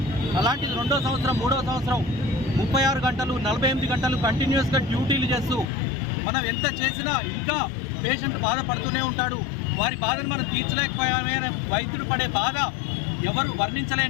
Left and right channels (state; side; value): drops out; right; at 5.7 s